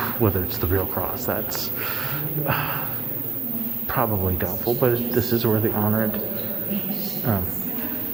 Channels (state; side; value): quieter; left; 5.0 dB